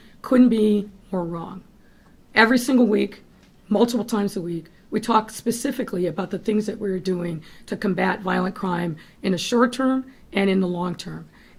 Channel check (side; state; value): both; identical; correlation 1.00